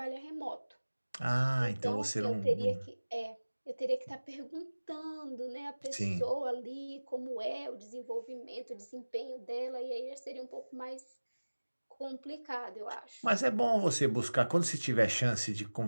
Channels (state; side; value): inverted; both; correlation -1.00